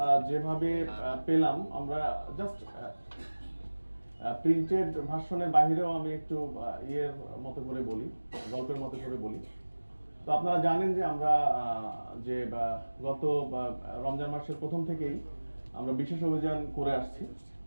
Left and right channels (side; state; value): both; inverted; correlation -1.00